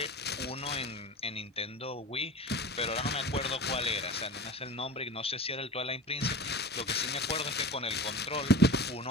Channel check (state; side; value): normal; both; correlation 0.35